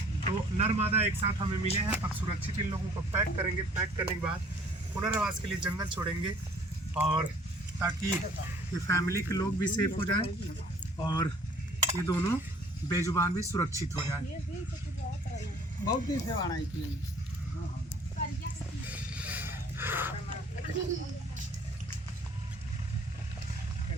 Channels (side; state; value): both; normal; correlation 0.55